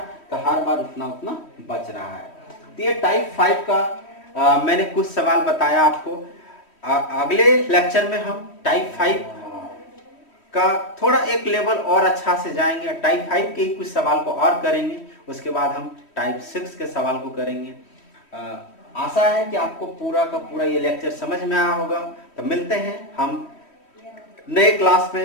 तो हर बार उतना उतना बच रहा है। तो ये टाइप 5 का मैंने कुछ सवाल बताया आपको। अगले लेक्चर में हम टाइप 5 का थोड़ा एक लेवल और अच्छा से जाएंगे, टाइप 5 के कुछ सवाल को और करेंगे, उसके बाद हम टाइप 6 के सवाल को करेंगे। आशा है कि आपको पूरा का पूरा ये लेक्चर समझ में आया होगा। तो मिलते हैं हम नए क्लास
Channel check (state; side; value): late; right; 3.1 ms